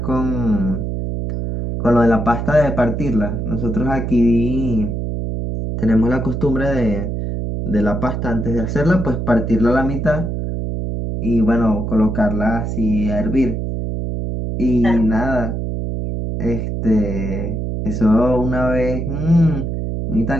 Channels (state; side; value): noise; right; hum, 3 dB below the sound